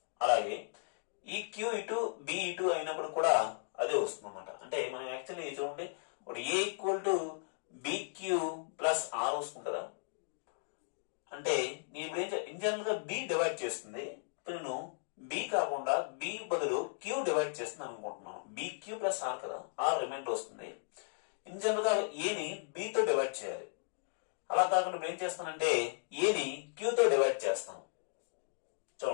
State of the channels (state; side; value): silent; right; digital silence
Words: అలాగే ఈ క్యూ ఇటు బి ఇటు అయినప్పుడు కూడా అదే వస్తుంది అన్నమాట. అంటే మనం యాక్చువల్లీ చూడండి, ఇప్పుడు A equal to B Q plus R వస్తుంది కదా. అంటే నేను ఇప్పుడు ఇన్ జనరల్ గా బి డివైడ్ చేస్తుంది. ఇప్పుడు నేను బి కాకుండా బి బదులు క్యూ డివైడ్ చేస్తున్నాను అనుకుంటున్నాను. బిక్యూ ప్లస్ ఆర్ కదా, ఆర్ రిమైండర్ వస్తుంది. ఇన్ జనరల్ గా ఏని బితో డివైడ్ చేయాలి. అలా కాకుండా ఇప్పుడు ఏం చేస్తానంటే ఏని క్యూతో డివైడ్ చేస్తాను.